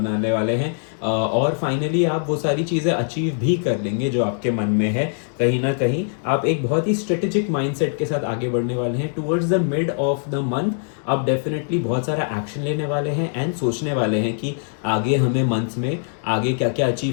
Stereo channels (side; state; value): right; silent; digital silence